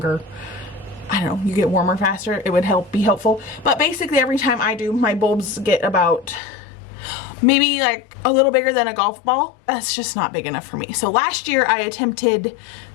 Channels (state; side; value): drops out; right; at 6.4 s